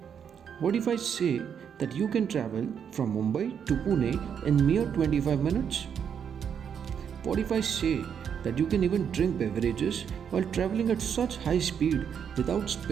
What if I say that you can travel from Mumbai to Pune in mere 25 minutes? What if I say that you can even drink beverages while traveling at such high speed without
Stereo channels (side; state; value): left; quieter; 7.8 dB